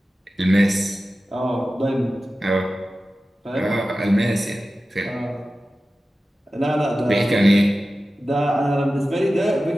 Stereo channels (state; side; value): normal; both; correlation 0.95